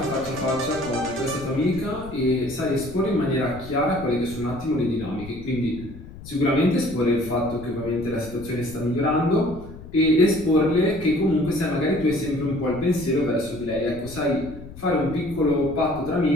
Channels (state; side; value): noise; left; rumble, 15 dB below the sound